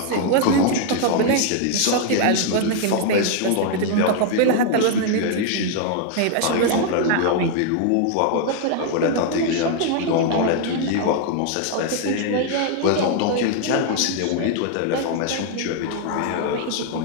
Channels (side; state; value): both; different; correlation 0.00